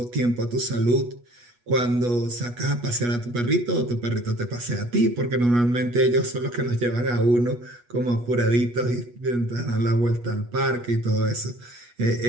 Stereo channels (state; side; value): late; left; 8.3 ms